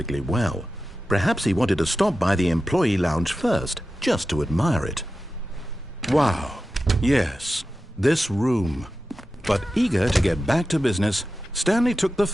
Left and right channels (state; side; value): normal; both; correlation 0.92